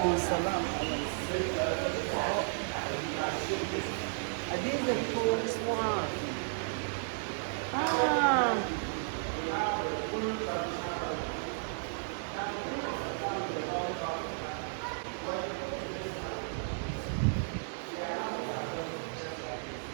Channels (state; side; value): silent; left; digital silence